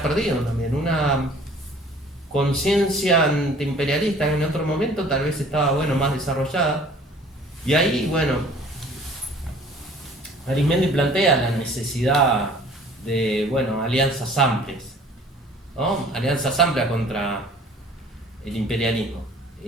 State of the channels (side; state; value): both; normal; correlation 0.51